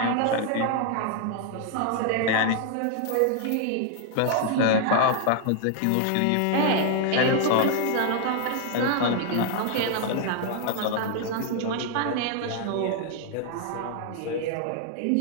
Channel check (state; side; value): different; both; correlation 0.00